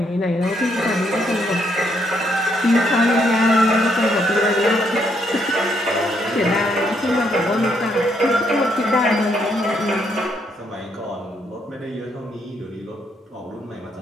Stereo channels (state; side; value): normal; both; correlation 0.73